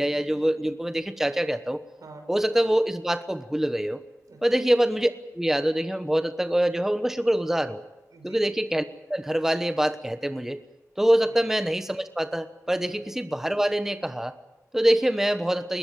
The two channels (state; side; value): normal; both; correlation 0.98